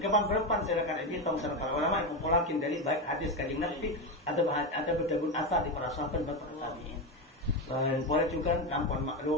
berpan saya akan hitung serta ulama yang mengumpulkan dari baik hadis kanjeng Nabi atau berdabun asar di para sahabat dan para tabi'in. Dan boleh juga kampung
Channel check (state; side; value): normal; both; correlation 0.14